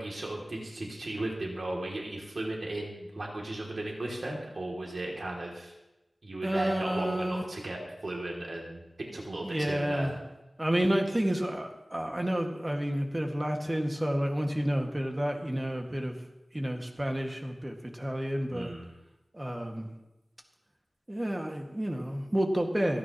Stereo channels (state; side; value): normal; both; correlation 0.98